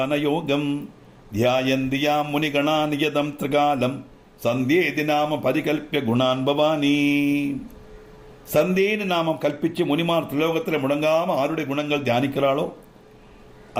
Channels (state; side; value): identical; both; correlation 1.00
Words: யோகம் தியாயந்தியா முனிகணா நியதம் திரிகாலம் சந்தேதி நாம பரிகல்பிய குணான் பவானி. சந்தேன்னு நாமம் கல்பிச்சு முனிமார் திலோகத்தில் முடங்காம ஆருடைய குணங்கள் தியானிக்கிறாளோ